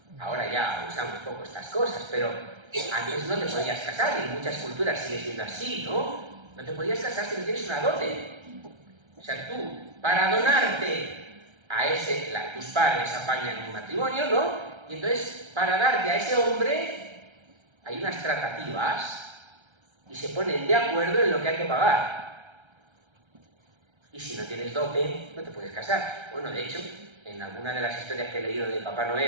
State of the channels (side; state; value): left; late; 1.3 ms